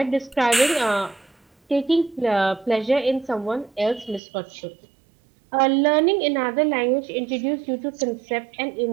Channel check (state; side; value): drops out; left; at 4.2 s